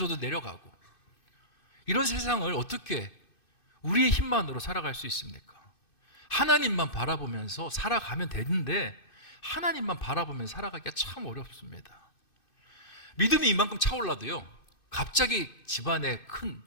내려가고. 이런 세상을 어떻게 우리의 힘만으로 살아갈 수 있습니까? 하나님만 바라보면서 살아가면 되는데, 하나님만 바라보면서 살아가기가 참 어렵습니다. 믿음이 이만큼 차올라도요, 갑자기 집안에 큰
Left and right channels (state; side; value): late; right; 2.5 ms